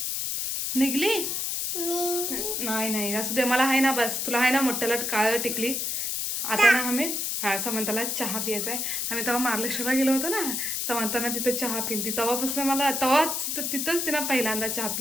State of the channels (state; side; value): noise; left; hiss, 1 dB below the sound